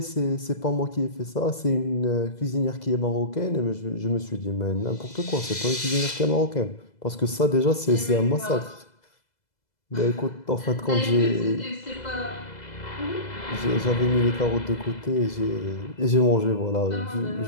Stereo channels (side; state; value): right; late; 2.0 ms